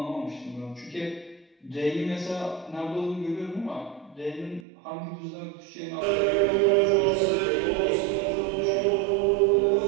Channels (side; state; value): left; drops out; at 4.6 s